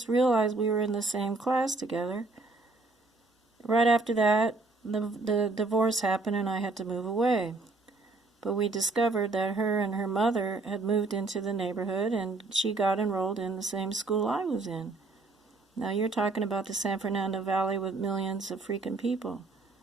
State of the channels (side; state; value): left; quieter; 3.5 dB